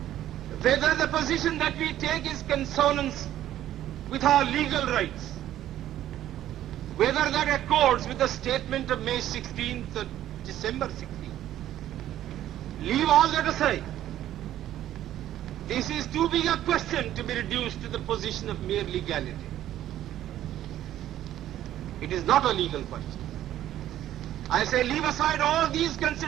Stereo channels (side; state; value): left; quieter; 12.5 dB